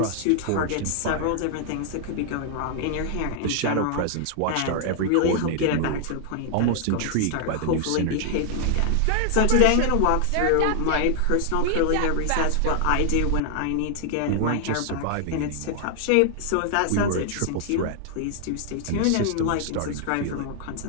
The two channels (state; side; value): different; both; correlation 0.00